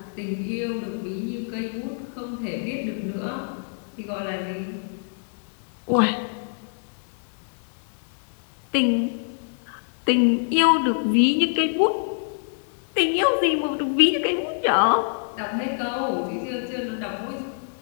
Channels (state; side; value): silent; right; digital silence